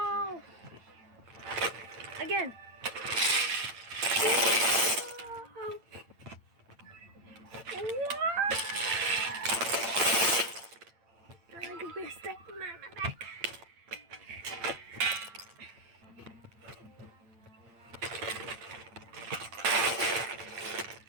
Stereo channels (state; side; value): late; left; 8.9 ms